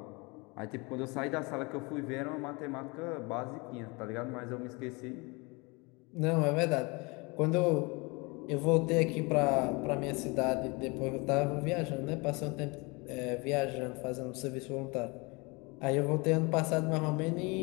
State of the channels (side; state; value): right; quieter; 27.8 dB